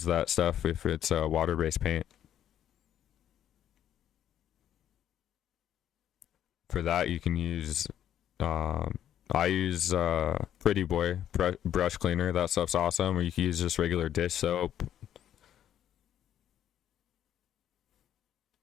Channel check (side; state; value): right; quieter; 10.7 dB